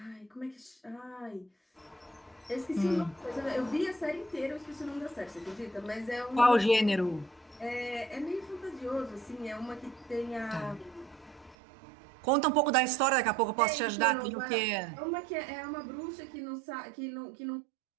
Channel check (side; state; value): left; drops out; at 11.6 s